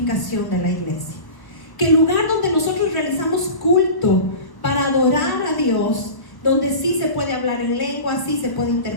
de la iglesia. Que el lugar donde nosotros realizamos culto para adorar a Dios, donde sí se puede hablar en lengua, sí se puede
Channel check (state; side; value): late; right; 1.0 ms